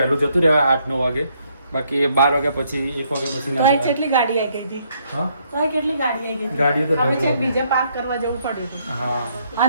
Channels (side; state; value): both; inverted; correlation -0.71